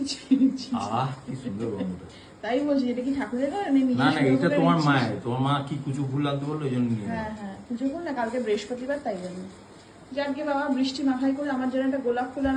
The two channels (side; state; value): both; identical; correlation 1.00